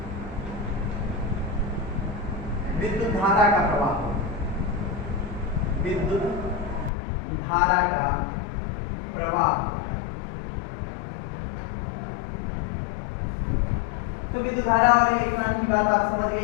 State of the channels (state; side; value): drops out; right; at 6.9 s